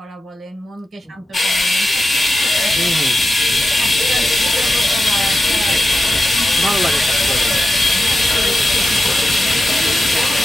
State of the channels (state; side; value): normal; both; correlation 0.91